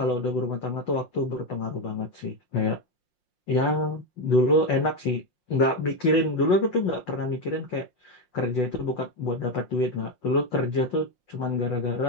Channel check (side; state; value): right; late; 5.7 ms